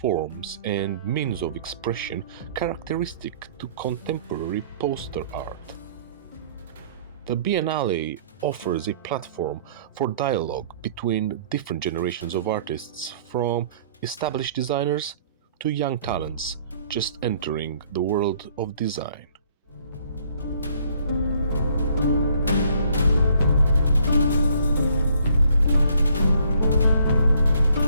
and means of expression characteristic to contemporary poster art. The Biennale offers a platform for dialogue between different generations of artists, from established designers to young talents just entering the world of design.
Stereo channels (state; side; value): inverted; both; correlation -0.61